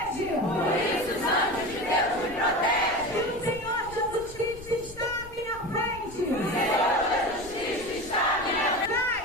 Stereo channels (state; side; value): noise; left; rumble, 18 dB below the sound